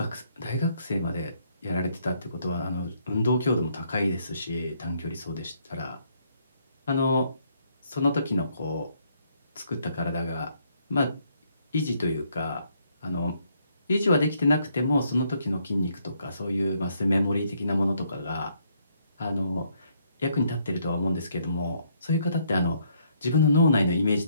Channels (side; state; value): both; inverted; correlation -0.70